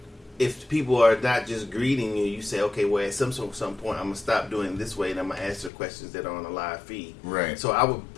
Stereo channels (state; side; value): drops out; right; at 5.7 s